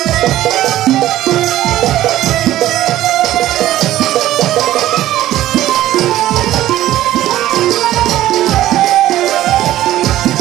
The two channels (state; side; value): quieter; left; 14.1 dB